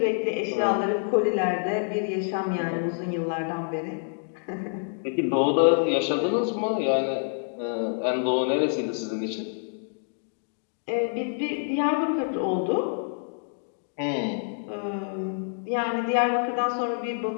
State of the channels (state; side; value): silent; right; digital silence